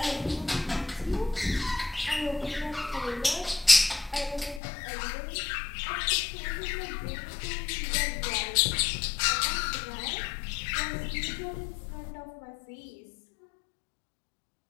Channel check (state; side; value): drops out; right; at 4.6 s